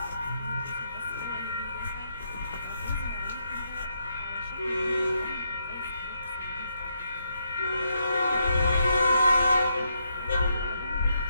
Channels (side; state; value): both; inverted; correlation -0.79